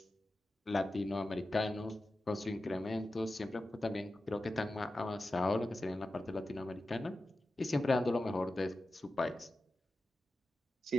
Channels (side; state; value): both; normal; correlation 0.93